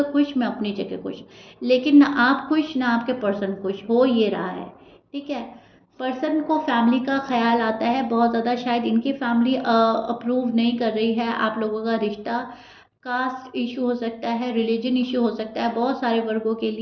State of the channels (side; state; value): both; identical; correlation 1.00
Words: खुश, मैं अपनी जगह खुश, लेकिन ना आप खुश ना आपके पर्सन खुश हो ये रहा है। ठीक है। पर्सन को फैमिली का ख्याल आता है बहुत ज़्यादा। शायद इनकी फैमिली अप्रूव नहीं कर रही है आप लोगों का रिश्ता। कास्ट इशू हो सकता है, रिलीजन इशू हो सकता है बहुत सारे वर्गों के